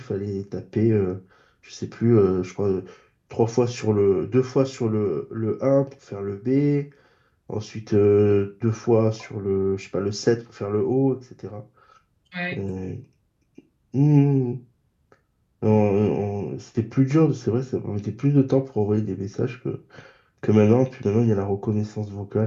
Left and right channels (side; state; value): both; identical; correlation 1.00